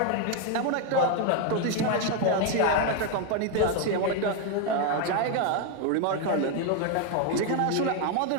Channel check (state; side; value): different; both; correlation 0.01